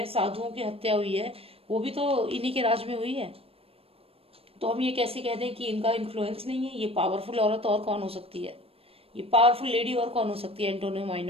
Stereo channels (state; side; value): late; left; 0.28 ms